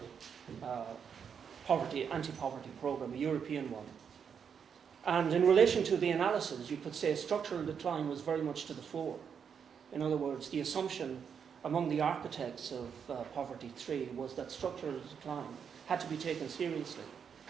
4-year anti-poverty program, a European one. And in relation to the analysis, you could say structural decline was very much to the fore. In other words, the assumption among the architects of Poverty 3 was that structural decline had to be taken seriously.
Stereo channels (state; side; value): quieter; left; 7.1 dB